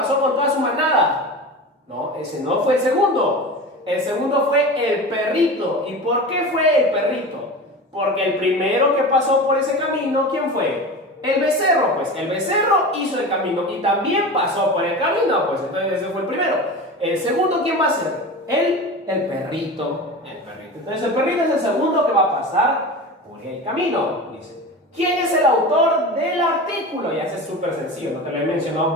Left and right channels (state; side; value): normal; both; correlation 0.30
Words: con toda su manada. No, ese no fue el segundo. El segundo fue el perrito. ¿Y por qué fue el perrito? Porque el primero que pasó por ese camino, ¿quién fue? El becerro. Pues el becerro hizo el camino y también pasó por el camino. Pues entonces ese fue el primero. El segundo, ¿quién va a ser? El perrito. Entonces el perrito es el segundo que va a pasar por el camino. Dice: ¿quién es el autor del artículo? Ya es súper sencillo, no te lo he mencionado